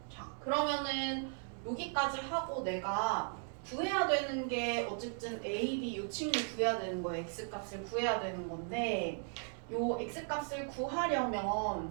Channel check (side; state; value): left; silent; 53 dB below the other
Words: 자 그러면은 여기까지 하고 내가 구해야 되는 게 어쨌든 A, B 이 친구 구해야 되는 거예요. X값을 구해야 되는 건데 요 X값을 구하려면